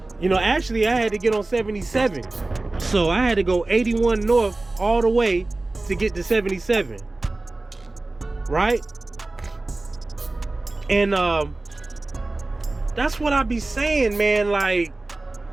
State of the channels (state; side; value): quieter; left; 3.0 dB